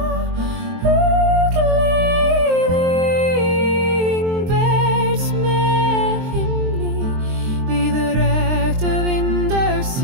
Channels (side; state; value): left; late; 23 ms